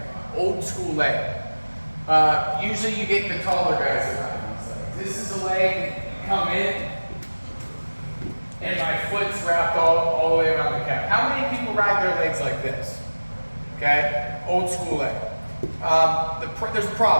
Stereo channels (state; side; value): inverted; both; correlation -1.00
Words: Usually you get the taller guys that ride these legs. This is a leg, you come in, and my foot's wrapped all the way around the calf. How many people ride their legs like this? Okay, old school leg. There's a